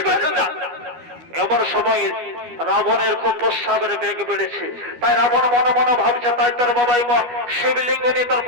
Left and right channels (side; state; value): left; late; 12 ms